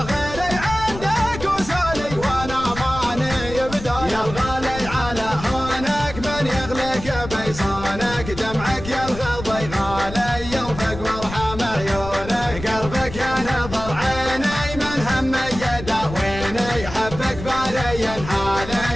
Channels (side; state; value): left; noise; rumble, 11 dB below the sound